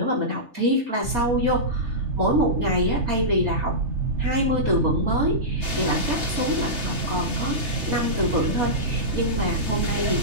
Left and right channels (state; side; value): late; left; 3.3 ms